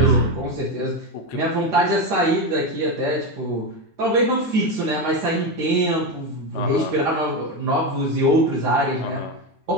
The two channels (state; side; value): normal; both; correlation 0.13